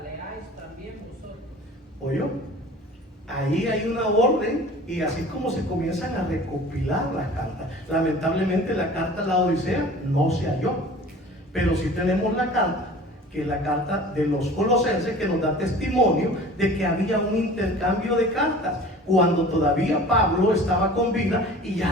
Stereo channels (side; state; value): both; normal; correlation 0.43